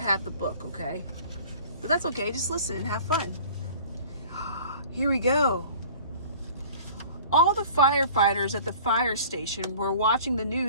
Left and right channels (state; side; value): inverted; both; correlation -0.46